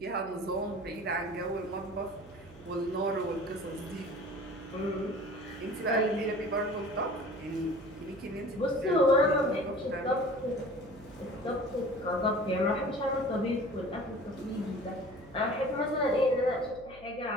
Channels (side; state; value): right; noise; hum, 21 dB below the sound